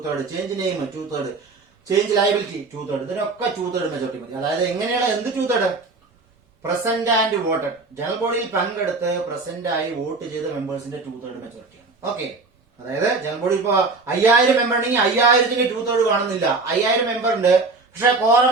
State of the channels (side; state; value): left; quieter; 3.8 dB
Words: change name 2/3, change liability 2/3, ഇതിനൊക്കെ 2/3 മെജോറിറ്റി മതി. അതായത് എങ്ങനെയാണ് എന്ത് 2/3? പ്രസന്റ് ആൻഡ് വോട്ടഡ്, ജനറൽ ബോഡിയിൽ പങ്കെടുത്ത് പ്രസന്റ് ആയി വോട്ട് ചെയ്ത മെമ്പേഴ്സിന്റെ 2/3 മെജോറിറ്റിയാണ്. ഓക്കെ, അതായത് ജനറൽ ബോഡി ഇപ്പൊ 5000 മെമ്പർ ഉണ്ടെങ്കിൽ 5000ന്റെ 2/3 കാണുന്നില്ല. 5000 മെമ്പർ ഉണ്ട്, പക്ഷെ കോറം